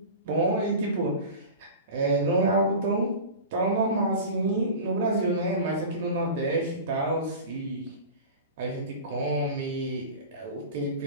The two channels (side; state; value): both; inverted; correlation -0.33